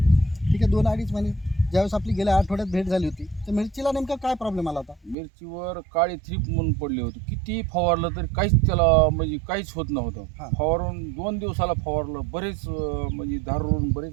ठीक आहे, 2-2.5 महिने. ज्यावेळेस आपली गेल्या आठवड्यात भेट झाली होती तर मिरचीला नेमका काय प्रॉब्लेम आला होता? मिरचीवर काळी थ्रीप म्हणून पडली होती. किती फवारलं तरी काहीच त्याला म्हणजे काहीच होत नव्हतं. हां. फवारून 2 दिवसाला फवारलं, बरेच म्हणजे धारूरून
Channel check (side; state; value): left; drops out; at 5.2 s